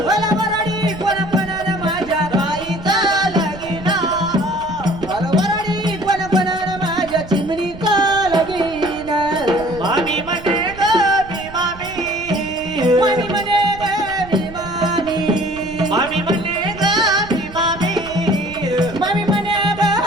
मला वराडी कोण कोणाला माझ्या ताईचा लगीन. मला वराडी कोण कोणाला माझ्या चिमणीचा लगीन. मामी म्हणे ग मी मामी. मामी म्हणे ग मी मामी. मामी म्हणे ग मी मामी. मामी म्हणे ग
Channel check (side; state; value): right; noise; rumble, 16 dB below the sound